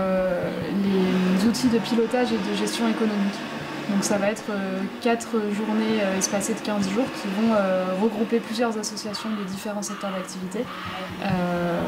outils de pilotage et de gestion économique. Donc ça va être 4 journées espacées de 15 jours qui vont regrouper plusieurs associations de différents secteurs d'activité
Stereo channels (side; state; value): both; identical; correlation 1.00